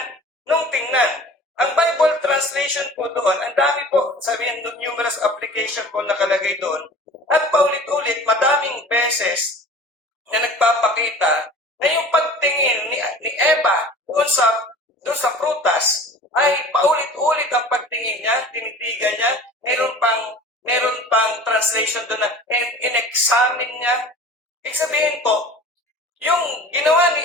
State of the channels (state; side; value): normal; both; correlation 0.42